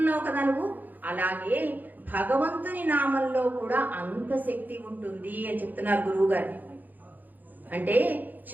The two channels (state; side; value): late; left; 0.084 ms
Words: కదా నువ్వు. అలాగే భగవంతుని నామంలో కూడా అంత శక్తి ఉంటుంది అని చెప్తున్నారు గురువు గారు. అంటే